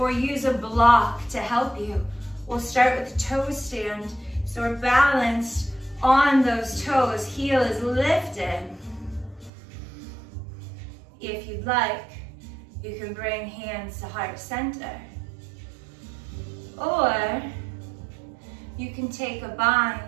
use a block to help you. We'll start with the toe stand. So we're balanced on those toes. Heel is lifted. If you'd like, you can bring hands to heart center. Or you can take a bind,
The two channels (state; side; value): drops out; left; at 9.5 s